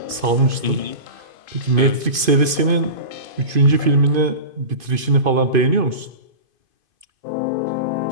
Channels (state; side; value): late; left; 2.5 ms